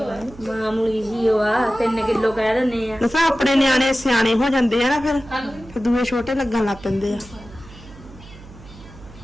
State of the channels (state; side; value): noise; right; hum, 19 dB below the sound